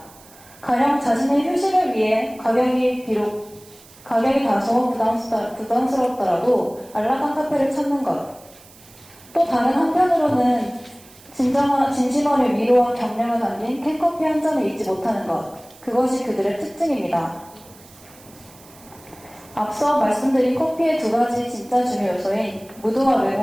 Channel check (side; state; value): right; noise; hiss, 24 dB below the sound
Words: 가령 자신의 휴식을 위해 가격이 다소 부담스럽더라도 안락한 카페를 찾는 것. 또 다른 한편으로는 진심어린 위로와 격려가 담긴 캔커피 한 잔을 잊지 못하는 것. 그것이 그들의 특징입니다. 앞서 말씀드린 커피의 두 가지 진짜 중요 요소인 무드와